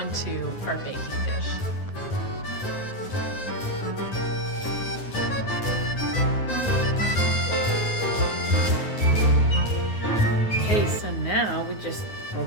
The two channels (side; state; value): right; late; 9.5 ms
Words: our baking dish. Okay, so now we're